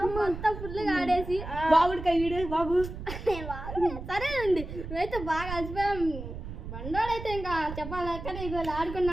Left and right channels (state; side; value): noise; right; rumble, 9 dB below the sound